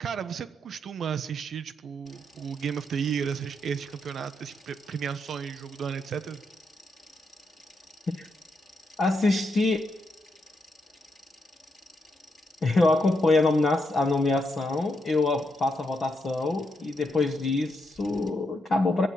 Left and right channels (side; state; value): both; normal; correlation 0.81